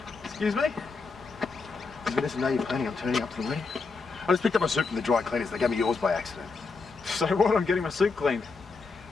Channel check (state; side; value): quieter; right; 4.4 dB